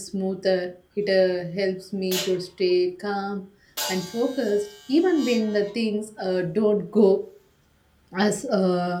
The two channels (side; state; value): both; identical; correlation 1.00